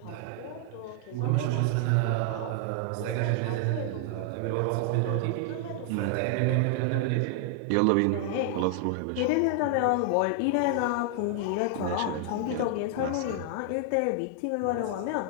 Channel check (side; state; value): both; different; correlation 0.00